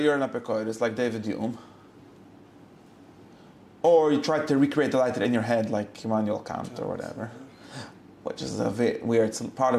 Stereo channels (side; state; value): both; identical; correlation 1.00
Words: an apikoidus like David Hume, or you try to recreate the lighter in your head like Immanuel Kant or whatever, which is a weird part